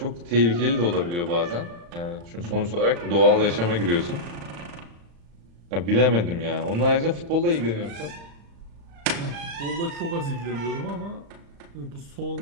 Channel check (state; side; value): late; left; 35 ms